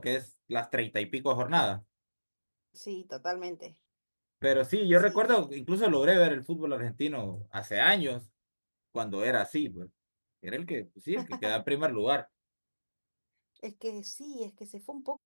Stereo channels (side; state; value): both; inverted; correlation -1.00